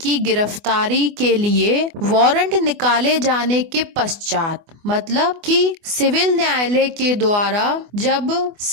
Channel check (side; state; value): left; late; 24 ms